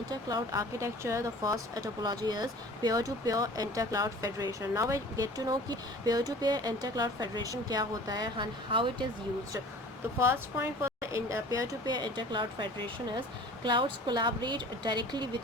architecture. The first topology is peer-to-peer intercloud federation. Now I get to know कि peer-to-peer intercloud federation क्या होता है and how it is used. The first point for in peer-to-peer intercloud federation is clouds collaborate directly with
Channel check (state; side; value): normal; both; correlation 0.44